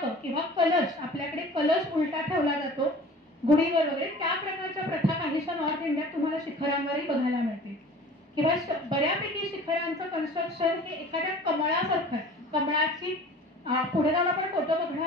किंवा कलश, आपल्याकडे कलश उलटा ठेवला जातो गुढीवर वगैरे, त्या प्रकारच्या प्रथा काहीशा नॉर्थ इंडियात तुम्हाला शिखरांवरही बघायला मिळते. किंवा बऱ्यापैकी शिखरांचं कन्स्ट्रक्शन हे एखाद्या कमळासारखं आहे. कमळाची पुढे जाऊन आपण फोटो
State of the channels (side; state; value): both; normal; correlation 0.44